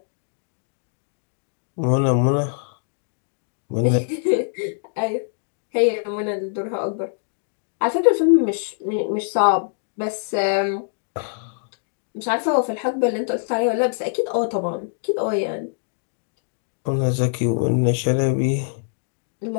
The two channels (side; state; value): right; silent; digital silence